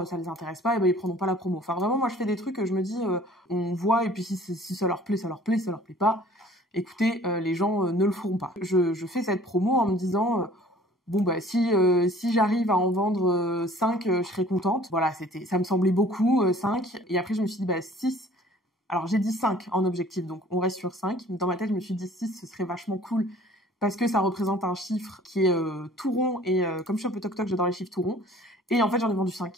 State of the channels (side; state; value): both; normal; correlation 0.51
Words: ça les intéresse pas, ils prendront pas la promo. Enfin vraiment, moi je fais des trucs, je me dis on voit, et puis si ça leur plaît, ça leur plaît, ça leur plaît pas, écoutez, les gens ne le feront pas. Je fais cette promo en me disant si j'arrive à en vendre 5, je serai contente. Voilà, ça me semblait beaucoup, 5, et après je me suis dit 6. Alors j'ai dit 5 en objectif, donc on reste sur 5. Dans ma tête, je me suis dit 6, ce serait vachement cool, parce que ça représente un chiffre qui est tout rond, et comme je suis un peu toc-toc, j'adore les chiffres tout ronds. Et en fait, j'en ai vendu